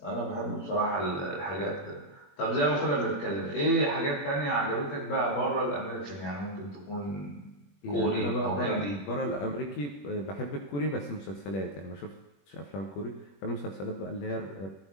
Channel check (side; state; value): right; late; 21 ms